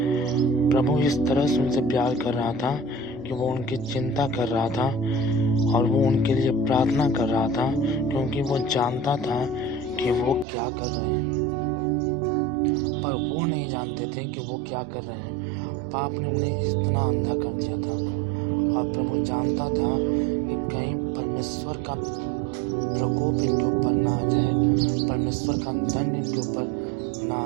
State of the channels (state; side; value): drops out; left; at 10.5 s